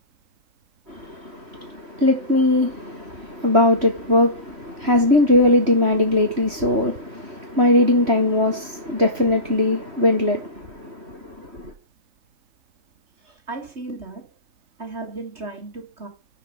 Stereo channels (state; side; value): late; left; 3.1 ms